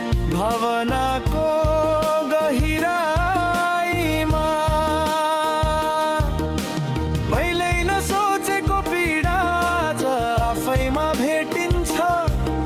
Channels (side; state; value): both; identical; correlation 1.00